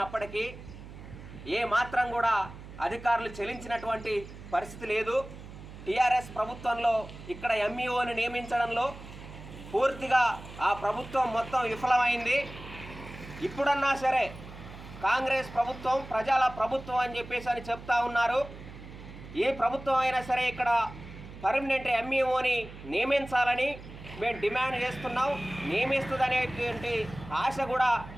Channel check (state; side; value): noise; right; hum, 15 dB below the sound